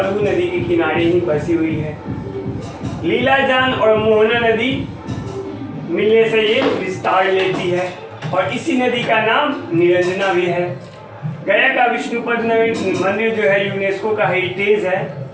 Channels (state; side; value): identical; both; correlation 1.00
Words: नदी के किनारे ही बसी हुई है। लीलाजान और मोहना नदी मिलने से ये विस्तार लेती है और इसी नदी का नाम निरंजना भी है। गया का विष्णुपद मंदिर जो है यूनेस्को का हेरिटेज है,